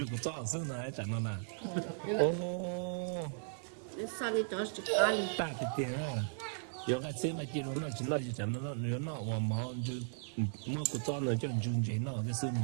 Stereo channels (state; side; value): silent; left; digital silence